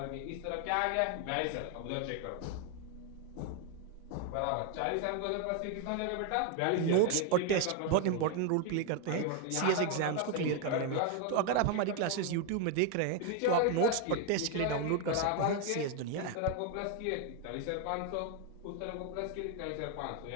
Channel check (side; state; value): both; different; correlation 0.01